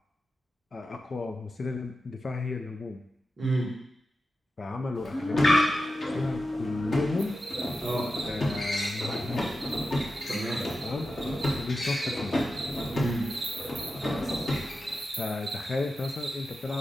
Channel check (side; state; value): both; normal; correlation 0.91